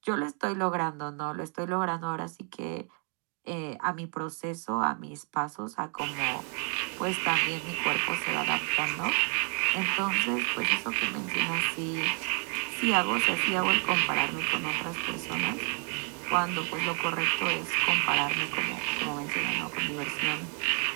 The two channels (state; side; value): quieter; left; 39.8 dB